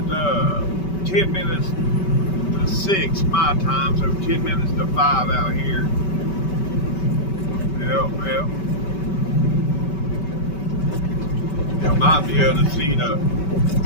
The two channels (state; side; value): late; right; 5.2 ms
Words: 10 minutes to 6 my time, so 10 minutes to 5 out here. Yep. You might be able to see the